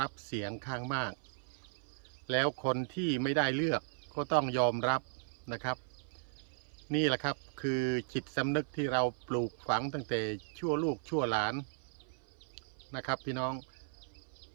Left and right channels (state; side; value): silent; left; 54 dB below the other